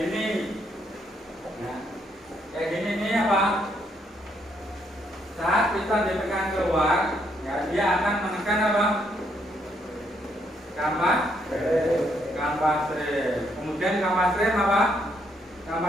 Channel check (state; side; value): normal; both; correlation 0.73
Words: gini. Nah, kayak gini nih apa? Saat piston ditekan keluar, ya dia akan menekan apa? Kampas rem. Kemudian kampas rem apa?